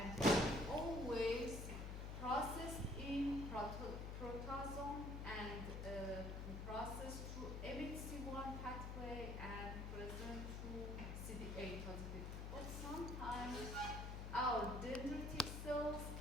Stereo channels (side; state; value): left; noise; hum, 4 dB below the sound